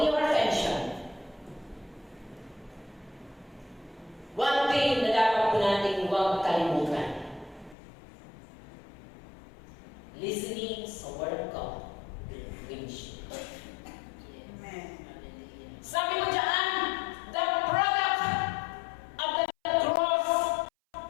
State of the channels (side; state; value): right; drops out; at 7.8 s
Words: your attention. One thing na dapat po natin huwag kalimutan. Listening sa Word of God. Which Amen. sabi mo dyan, the product of the